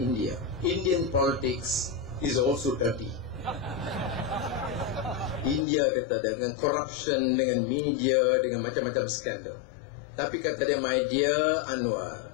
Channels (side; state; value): right; drops out; at 5.7 s